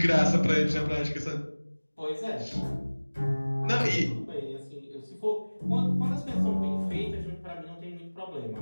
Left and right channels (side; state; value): both; inverted; correlation -1.00